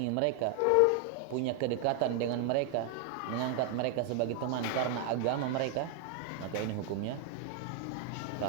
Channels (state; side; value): different; both; correlation 0.00